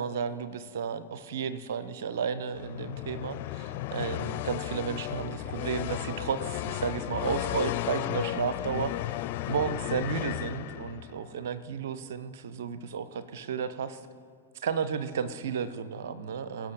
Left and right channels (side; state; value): both; inverted; correlation -0.39